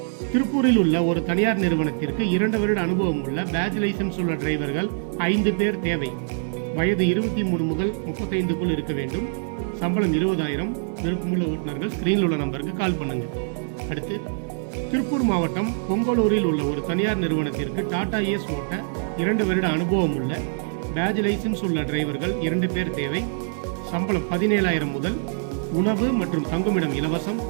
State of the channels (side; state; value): left; silent; digital silence